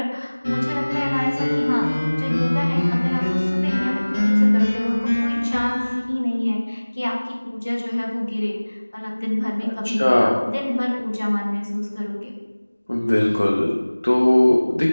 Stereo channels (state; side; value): inverted; both; correlation -1.00